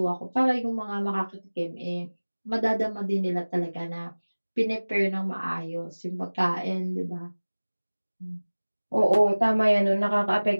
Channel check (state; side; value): inverted; both; correlation -1.00